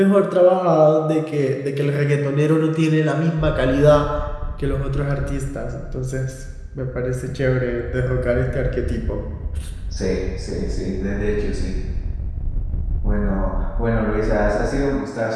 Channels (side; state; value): both; identical; correlation 1.00